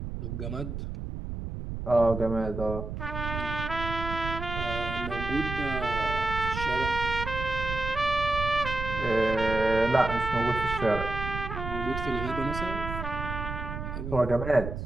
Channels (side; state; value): right; noise; rumble, 6 dB below the sound